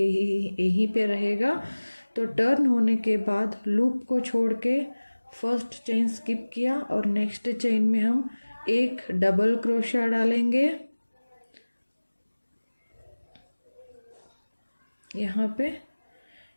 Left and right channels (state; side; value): inverted; both; correlation -1.00